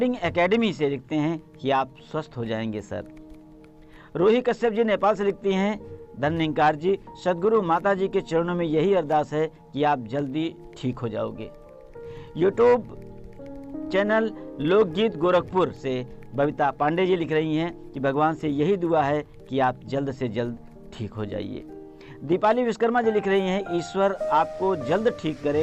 एकेडमी से लिखते हैं कि आप स्वस्थ हो जाएंगे सर। रोही कश्यप जी नेपाल से लिखती हैं, धन्यकार जी, सदगुरु माता जी के चरणों में यही अरदास है कि आप जल्दी ठीक हो जाओगे। यूट्यूब चैनल लोकगीत गोरखपुर से बबीता पांडे जी लिख रही हैं कि भगवान से यही दुआ है कि आप जल्द से जल्द ठीक हो जाइए। दीपाली विश्वकर्मा जी लिख रही हैं, ईश्वर आपको जल्द ठीक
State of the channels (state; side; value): identical; both; correlation 1.00